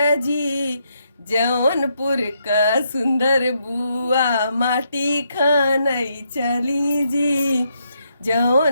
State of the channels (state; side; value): inverted; both; correlation -0.77